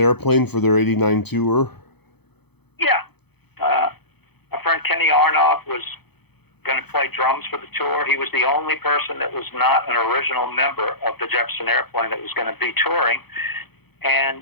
for their '89 tour? Yeah. My friend Kenny Arnoff was going to play drums for the tour. He was the only person that was not an original member of the Jefferson Airplane that was going to be touring, and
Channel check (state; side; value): late; right; 0.98 ms